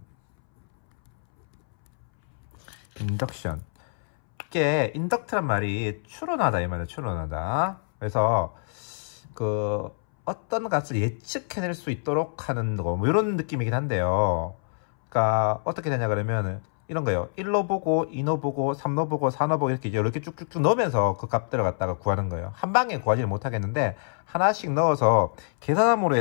이게 인덕트란 말이 추론하다 이 말이에요. 추론하다. 그래서 그 어떤 값을 예측해낼 수 있도록 하는 거, 뭐 이런 느낌이긴 한데요. 그러니까 어떻게 되냐 그러면 이런 거예요. 1로 보고 2로 보고 3로 보고 4로 보고 이렇게 쭉쭉쭉 넣으면서 그 값 들어갔다가 구하는 거예요. 한 방에 구하지는 못하겠는데 하나씩 넣어서 계산함으로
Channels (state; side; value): silent; right; 61 dB below the other